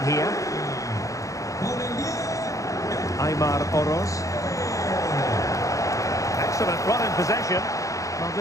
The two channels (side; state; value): right; late; 0.16 ms